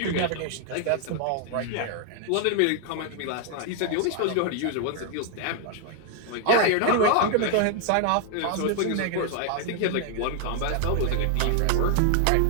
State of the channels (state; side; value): different; both; correlation 0.00